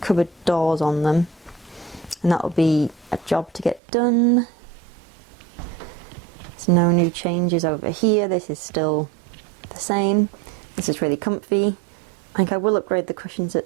doors on them, and that will be a job to get done. There's no new changes over here. This is still the same. This is really comfy. I think I will upgrade the cushions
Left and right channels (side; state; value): left; drops out; at 3.8 s